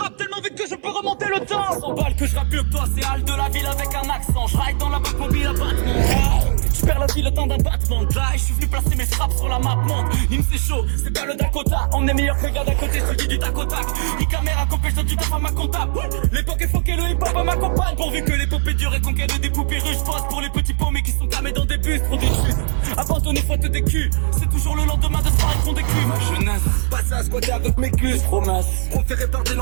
tellement vite que je peux remonter le temps. 100 balles que je rappe mieux que toi, c'est Hal de la ville avec un accent. Je ride dans la boîte mobile à battement. Je perds la vie le temps d'un battement de là et je suis venu placer mes frappes sur la map monde. Nîmes c'est chaud, c'est pas le Dakota. On est meilleur que le gars d'à côté, je te dis du tac au tac. Ni caméra copée, je donne du taf à ma comptable. L'époque est foquée, le hip-hop à ma compagne. Pourvu que l'épopée dure et conquête des poupées russes. Pose pour les petits paumés qui sont camés dans des bus. Trop des justes, abandonner faute des culs. C'est toujours le lendemain de soirée qu'on décuve. Ma jeunesse, passe à squatter avec mes culs. Promesse, proféré par des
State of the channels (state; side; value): silent; left; 59 dB below the other